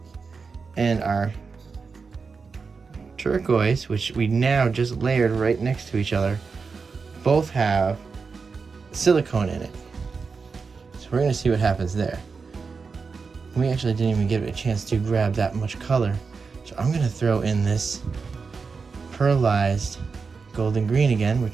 and our turquoise, which we now just layered right next to each other, both have silicone in it. So we're gonna see what happens there. We actually didn't even give it a chance to grab that much color. So I'm gonna throw in this pearlized golden green again,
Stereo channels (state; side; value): quieter; left; 4.9 dB